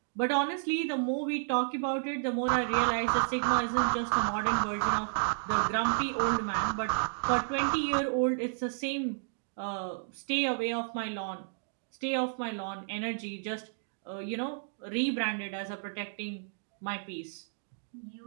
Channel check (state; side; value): silent; left; digital silence